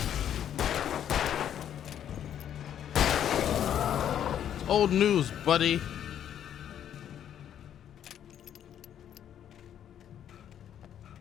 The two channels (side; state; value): right; quieter; 9.9 dB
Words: Old news, buddy.